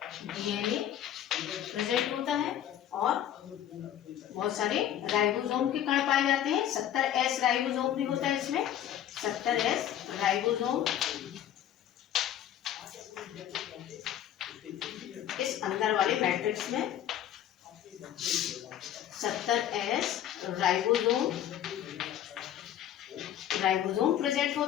डीएनए प्रेजेंट होता है और बहुत सारे राइबोसोम के कण पाए जाते हैं। 70S राइबोसोम भी होता है इसमें। 70S राइबोसोम इस अंदर वाले मैट्रिक्स में 70S राइबोसोम प्रेजेंट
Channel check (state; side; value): quieter; right; 10.9 dB